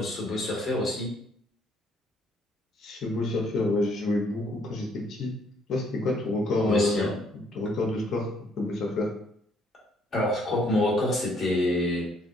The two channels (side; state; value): both; normal; correlation 0.67